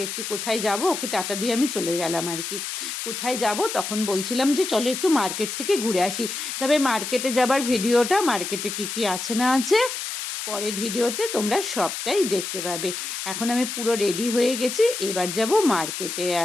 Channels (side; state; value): left; noise; hiss, 5 dB below the sound